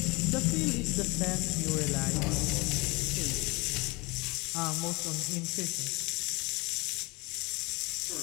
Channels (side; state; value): right; quieter; 25.6 dB